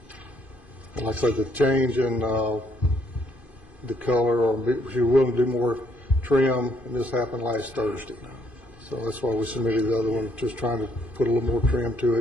And like I said, the change in the color, or if you're willing to do more trim, and this happened last Thursday. So that's why we submitted the other one, just trying to put a little more trim to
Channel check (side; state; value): right; late; 2.5 ms